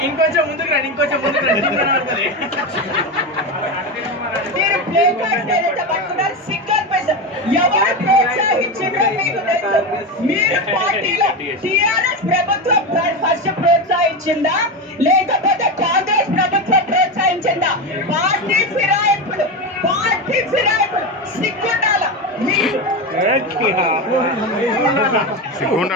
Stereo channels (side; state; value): both; normal; correlation 0.17